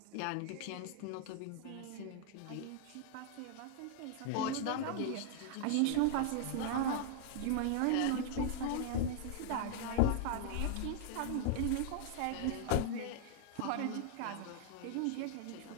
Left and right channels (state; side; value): different; both; correlation -0.01